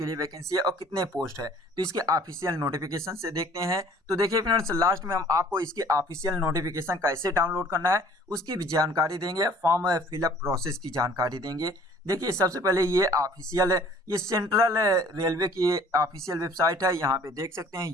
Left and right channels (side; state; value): both; normal; correlation 0.52